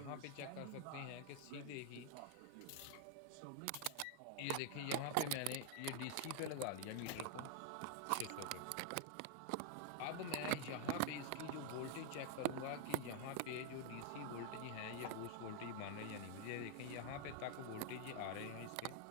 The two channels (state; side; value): different; both; correlation 0.00